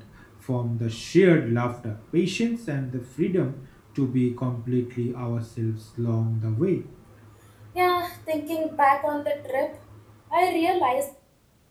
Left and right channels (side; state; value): both; identical; correlation 1.00